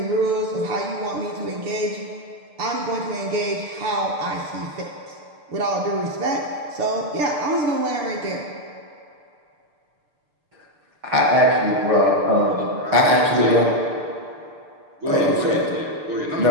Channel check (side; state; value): left; late; 6.7 ms